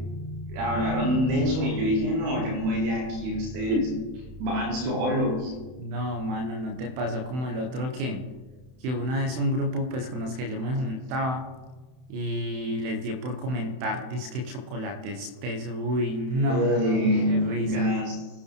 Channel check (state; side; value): late; left; 31 ms